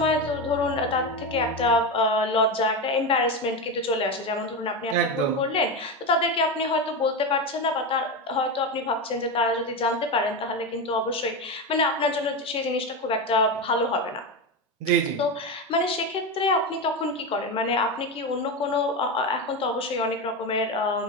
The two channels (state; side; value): normal; both; correlation 0.16